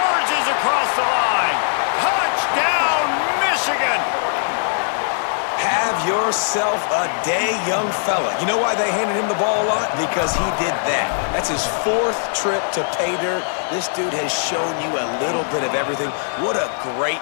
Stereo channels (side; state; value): right; silent; digital silence